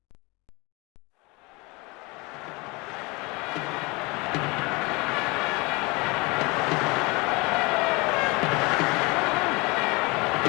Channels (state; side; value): quieter; right; 26.2 dB